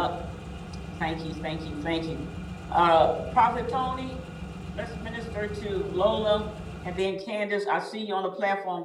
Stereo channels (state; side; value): identical; both; correlation 1.00